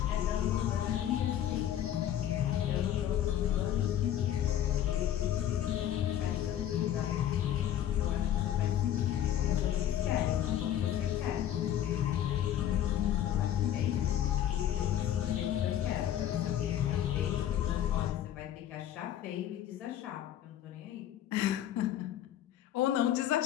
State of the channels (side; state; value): right; quieter; 11.2 dB